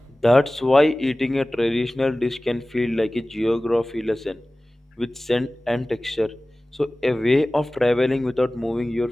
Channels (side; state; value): both; normal; correlation 0.98